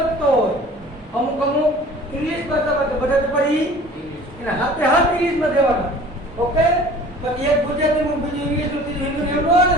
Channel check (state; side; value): normal; both; correlation 0.46